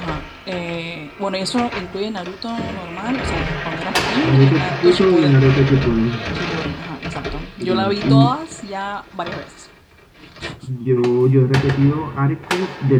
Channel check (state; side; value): identical; both; correlation 1.00